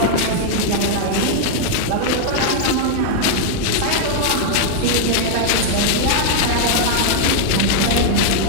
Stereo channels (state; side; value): different; both; correlation 0.00